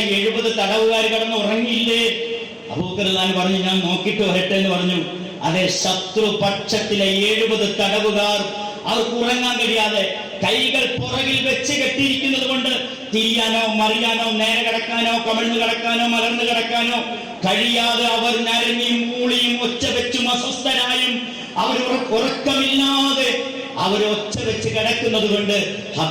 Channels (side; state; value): both; identical; correlation 1.00